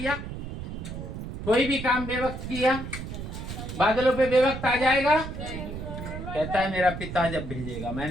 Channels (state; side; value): noise; right; rumble, 8 dB below the sound